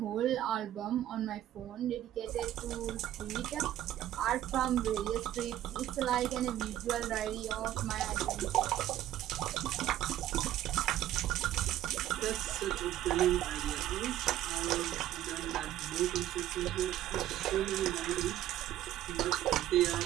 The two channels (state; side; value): quieter; left; 12.8 dB